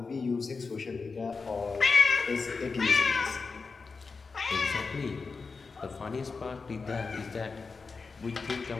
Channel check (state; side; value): quieter; right; 4.6 dB